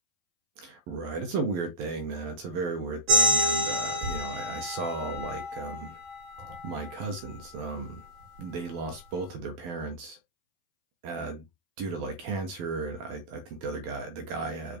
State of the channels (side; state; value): left; late; 12 ms